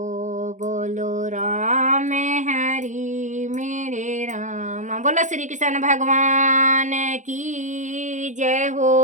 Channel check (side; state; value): left; late; 0.36 ms